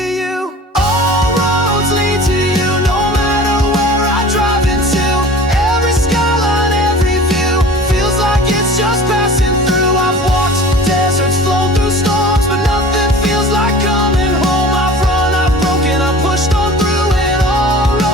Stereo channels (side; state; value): both; normal; correlation 0.42